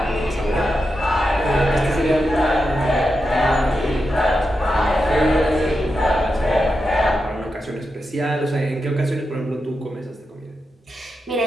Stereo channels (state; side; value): normal; both; correlation 0.88